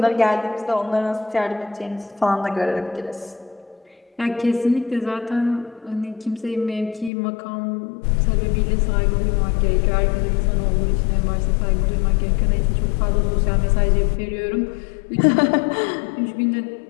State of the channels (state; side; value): drops out; right; at 7.1 s